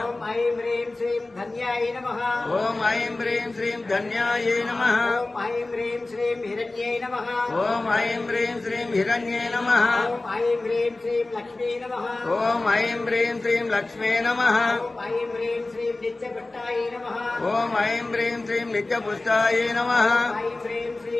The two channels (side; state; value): right; quieter; 3.0 dB